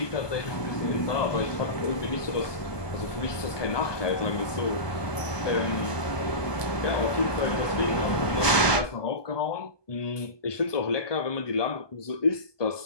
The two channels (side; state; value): right; late; 1.2 ms